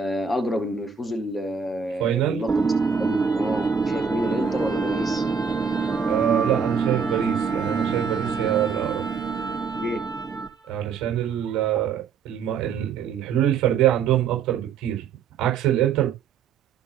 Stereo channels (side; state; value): left; quieter; 6.2 dB